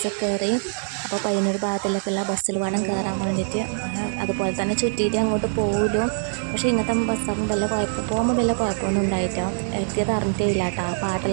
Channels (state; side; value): silent; left; 63 dB below the other